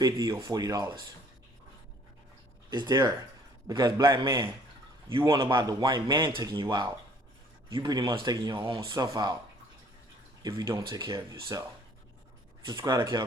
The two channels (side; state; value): both; normal; correlation 0.58